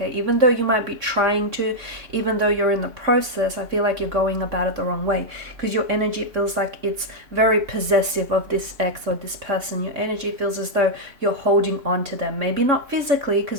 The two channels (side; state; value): left; late; 3.6 ms